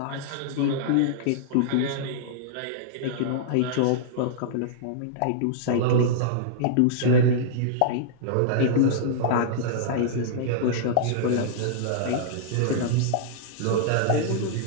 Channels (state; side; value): different; both; correlation -0.02